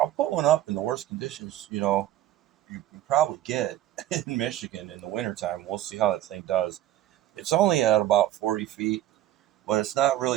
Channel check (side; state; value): left; quieter; 13.4 dB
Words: put one up in the worst conditions. You know, you can probably get in Michigan in the wintertime. We'll see how that thing does. It's only at about 40 feet, but it's not